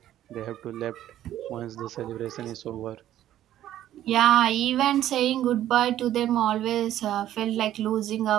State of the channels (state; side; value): quieter; left; 12.4 dB